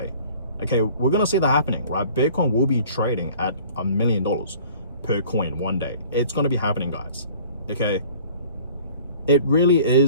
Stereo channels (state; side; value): inverted; both; correlation -0.49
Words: Okay, we're gonna see that happening, right? Bitcoin will be trading at $1 million per coin one day. It's gonna be happening, guys. Okay, it really